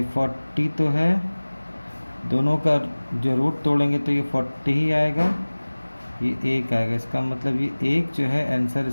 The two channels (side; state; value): both; inverted; correlation -1.00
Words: 40 तो है, दोनों का जो रूट तोड़ेंगे तो ये 40 ही आएगा, ये 1 आएगा। इसका मतलब ये 1 जो है आंसर